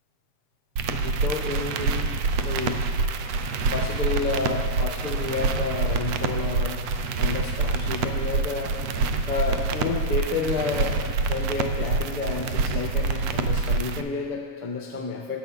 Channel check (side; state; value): left; late; 8.1 ms